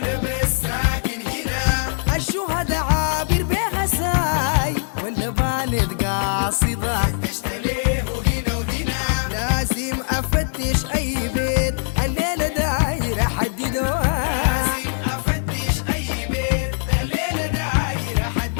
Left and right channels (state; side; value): silent; right; digital silence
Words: بس ساكن هنا الشهداء عابر بها ساي ولا بانت قاصدة؟ فتشت له هنا وهنا لازم افتش اي بيت الليلة دايرة حددوها. لازم افتش اي بيت الليلة دايرة